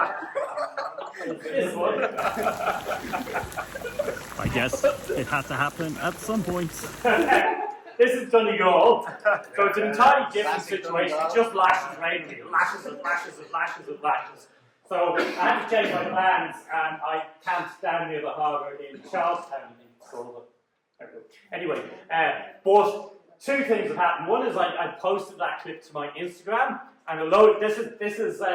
this one. I guess it had to happen at some point. This is Donegal, so it's an entirely different situation. It just lashes randomly, lashes and lashes and lashes and lashes. So I had to change my plans, and I camped down near the harbour in Charlestown, I think it's called. Anyway, but two things have happened. One is I posted that clip to my Instagram, and this is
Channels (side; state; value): both; identical; correlation 1.00